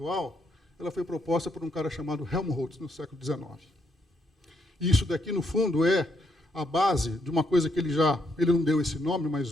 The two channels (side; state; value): both; normal; correlation 0.76